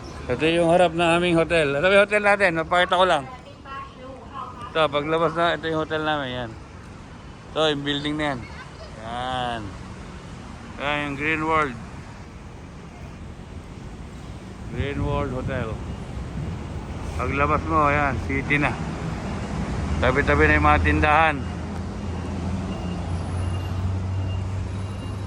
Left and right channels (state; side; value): identical; both; correlation 1.00